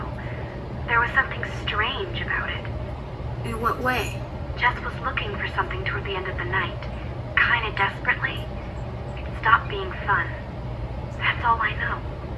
There was something strange about it. In what way? Jess was looking for something toward the end of the night, kind of desperately. It stopped being fun. That's all I know.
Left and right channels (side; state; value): both; identical; correlation 1.00